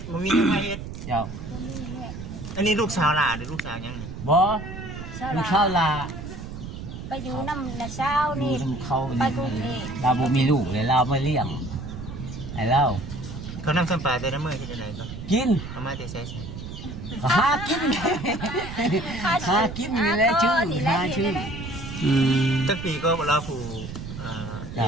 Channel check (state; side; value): noise; right; rumble, 9 dB below the sound